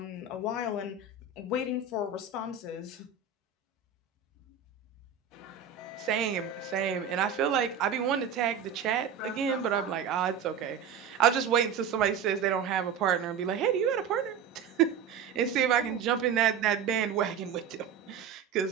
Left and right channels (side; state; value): left; quieter; 6.9 dB